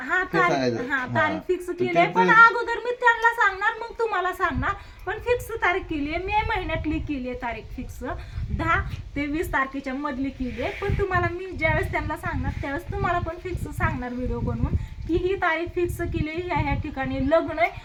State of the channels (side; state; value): both; identical; correlation 1.00